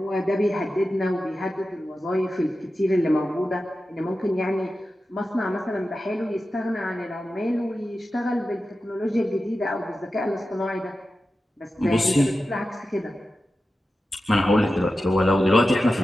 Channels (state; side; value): normal; both; correlation 0.93